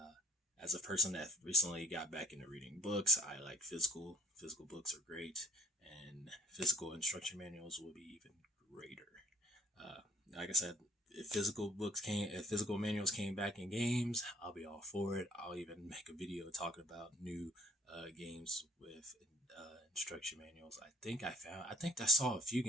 as a person that recently got back into reading books, I like physical. Physical books are great, and physical instruction manuals will be even greater. Uh, like I said, if physical manuals came back in games, I'll be all for it. I'll even make a video talking about new games with instruction manuals. I think I saw a few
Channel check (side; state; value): both; normal; correlation 0.57